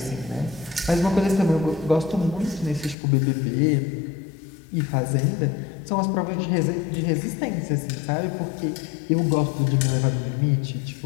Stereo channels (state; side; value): drops out; right; at 3.0 s